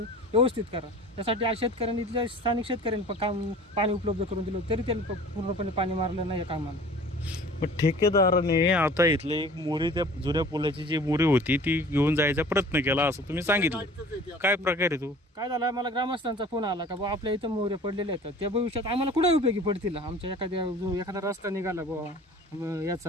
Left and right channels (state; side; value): normal; both; correlation 0.45